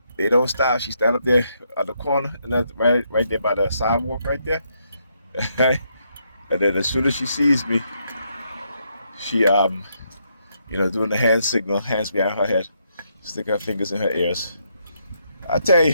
they don't stop. She stand up there at the corner, and that's right there by the sidewalk, right there. And then as soon as she sees me, she doing the hand signal, hands behind her head, stick her fingers in her ears. I tell you,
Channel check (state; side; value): inverted; both; correlation -0.76